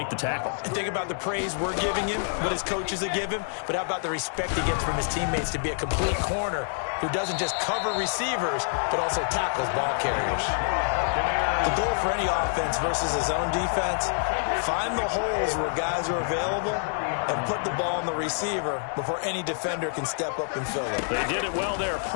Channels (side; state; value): right; silent; digital silence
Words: the tackle. And think about the praise we're giving him, what his coaches are giving him, but how about the respect he gets from his teammates to be a complete corner who doesn't just cover receivers, but also tackles ball carriers. The goal for any offense versus his own defense, find the holes where guys are available and put the ball on the receiver before any defender can step up and fill it. They did it well there.